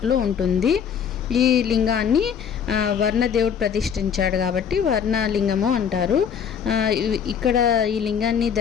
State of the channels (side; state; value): right; quieter; 7.6 dB